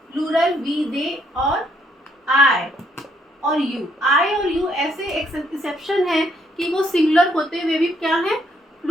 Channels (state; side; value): normal; both; correlation 0.71